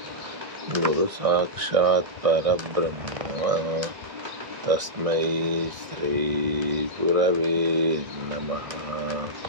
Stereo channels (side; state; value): left; late; 1.6 ms